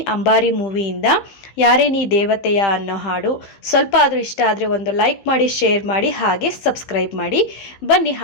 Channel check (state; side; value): late; right; 15 ms